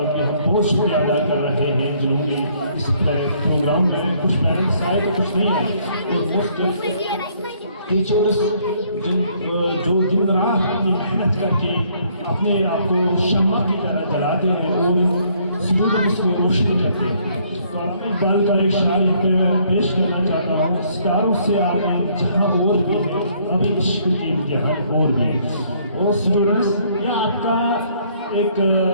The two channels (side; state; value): both; inverted; correlation -0.65